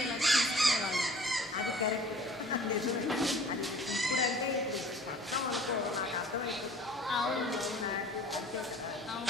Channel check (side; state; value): both; normal; correlation 0.49